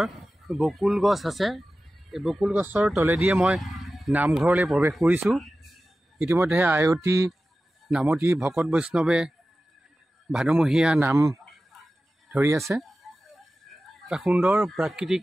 বকুল গছ আছে। এই বকুল গছৰ তলেদিয়ে মই নামঘৰলৈ প্ৰৱেশ কৰিছোঁ। ইতিমধ্যে আয়তী নামতী ভকত বৈষ্ণৱে ভাদমহীয়া নাম ধৰি আছে। এটা সুন্দৰ প্ৰাকৃতিক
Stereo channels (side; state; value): both; normal; correlation 0.95